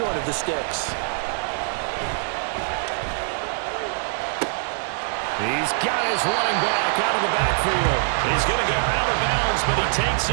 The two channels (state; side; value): silent; left; digital silence